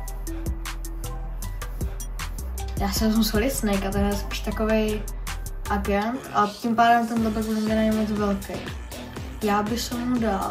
Já si vezmu Solid Snakea, ten je spíš takovej agent a tím pádem ten backblink není moc velký. Já bych mu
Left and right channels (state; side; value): identical; both; correlation 1.00